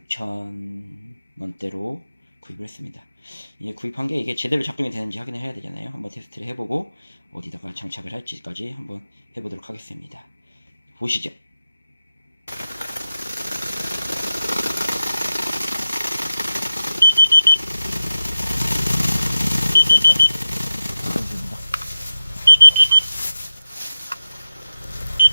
구입을 했습니다. 이게 구입한 게 이게 제대로 작동이 되는지 확인을 해야 되잖아요. 한번 테스트를 해보고 어디다가 장착을 할지까지 한번 해보도록 하겠습니다. 보시죠. 일산탄소입니다.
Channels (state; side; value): inverted; both; correlation -0.92